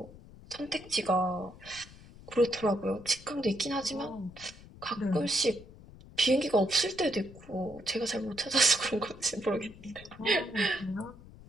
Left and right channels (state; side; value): noise; left; rumble, 19 dB below the sound